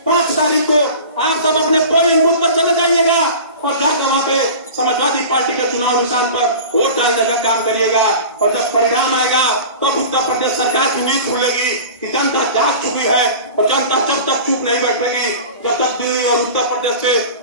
5 तारीख को आप सब अपने पोलिंग बूथ पर चले जाइएगा और जाकर वहाँ पे समाजवादी पार्टी के चुनाव निशान पर वोट डालने का काम करिएगा, और जब परिणाम आएगा तब उत्तर प्रदेश सरकार की नींद खुलेगी कि जनता जाग चुकी है, और जनता जब तक चुप नहीं बैठेगी, जब तक दिल्ली और उत्तर प्रदेश से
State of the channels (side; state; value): both; inverted; correlation -0.36